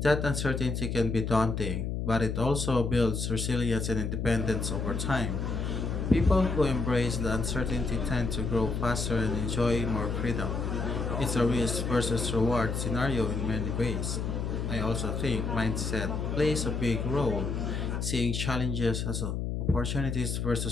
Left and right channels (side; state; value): left; noise; hum, 2 dB below the sound